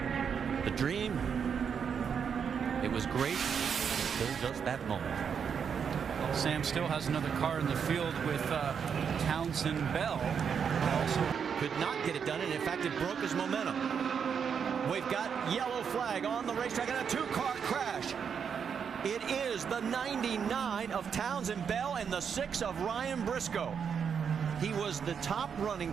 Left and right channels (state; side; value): quieter; left; 7.0 dB